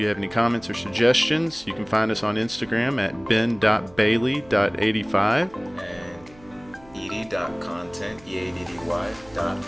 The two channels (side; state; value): right; noise; hum, 25 dB below the sound